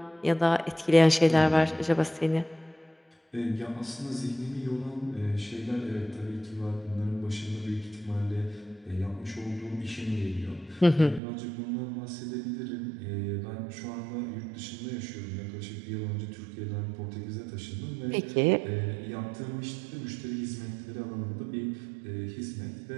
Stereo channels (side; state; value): left; drops out; at 11.2 s